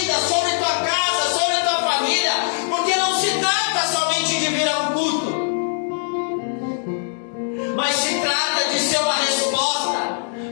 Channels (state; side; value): silent; right; 65 dB below the other